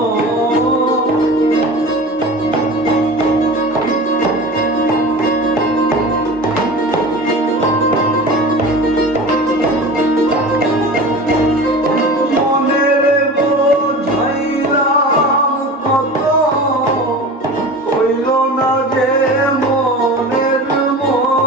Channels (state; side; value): normal; both; correlation 0.34